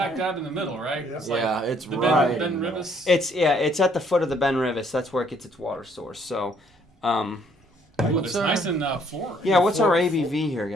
dab in the middle, right? Yeah. It's Yeah, it's the right. Ben in the middle. Rivis. It's at the foot of the Ben Rivis. That's where it gets its water source. So, Ooh, it's What's our- nice and floral. yeah. What's our ABV here, It's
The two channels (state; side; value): normal; both; correlation 0.65